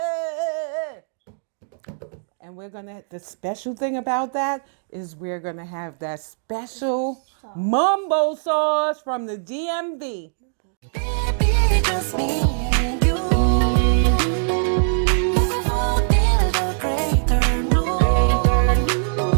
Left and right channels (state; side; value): silent; left; digital silence